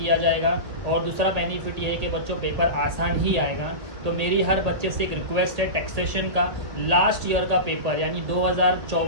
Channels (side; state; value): left; late; 1.6 ms